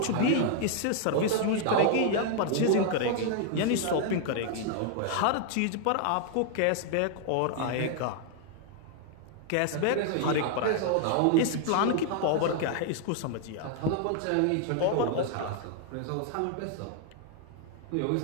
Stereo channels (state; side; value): different; both; correlation 0.00